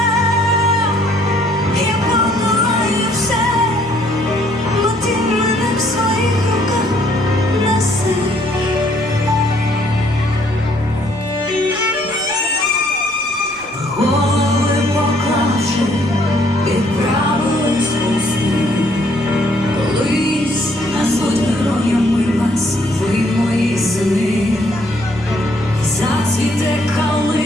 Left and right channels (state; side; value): noise; right; rumble, 23 dB below the sound